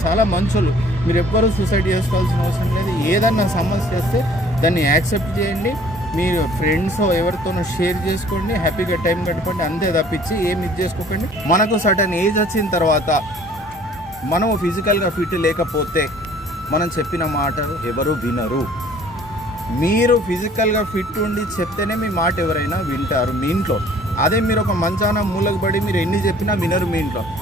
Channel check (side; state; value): both; normal; correlation 0.54